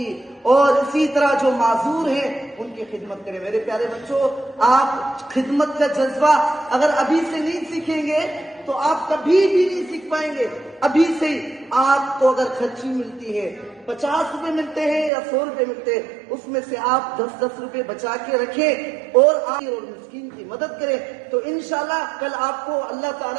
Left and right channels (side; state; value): left; drops out; at 15.1 s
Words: اور اسی طرح جو معذور ہیں ان کی خدمت کریں۔ میرے پیارے بچوں، آپ خدمت کا جذبہ اگر ابھی سے نہیں سیکھیں گے تو آپ کبھی بھی نہیں سیکھ پائیں گے۔ ابھی سے ہی آپ کو اگر خرچی ملتی ہے، 50 روپے ملتے ہیں یا 100 روپے ملتے ہیں، اس میں سے آپ 10 روپے بچا کے رکھیں اور آپ مسکین کی مدد کریں، تو انشاءاللہ کل آپ کو اللہ